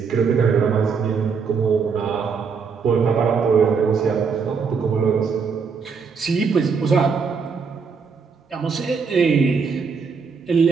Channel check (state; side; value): quieter; left; 5.6 dB